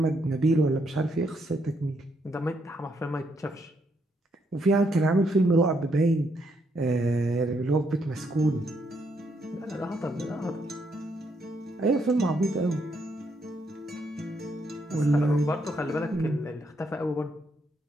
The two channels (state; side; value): normal; both; correlation 0.75